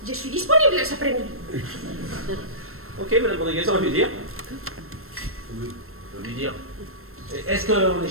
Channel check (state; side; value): late; left; 0.62 ms